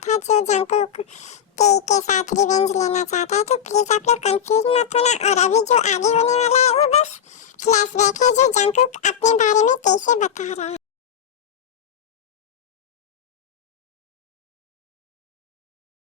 था जो जंकुक के साथ रिवेंज लेना चाहता है। तो प्लीज आप लोग कंफ्यूज मत होना, और अभी जो आगे होने वाला है वो बस फ्लैशबैक है जो जंकुक अपने बारे में कैसे बता रहा है।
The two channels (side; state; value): right; quieter; 8.6 dB